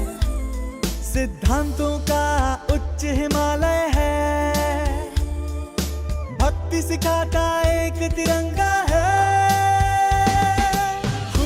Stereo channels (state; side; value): identical; both; correlation 1.00